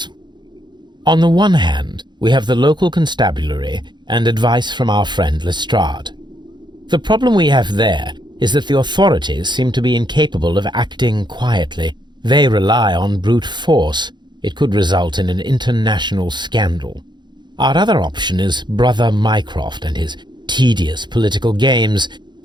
On the one hand, we have the local constabulary and advice from our friend Lestrade. The problem we have there is that the authorities seem to be incapable of acting quietly. They rely on brute force. It could result in an international scandal. Our other option is Brother Mycroft and his tedious political games.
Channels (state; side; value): late; left; 0.22 ms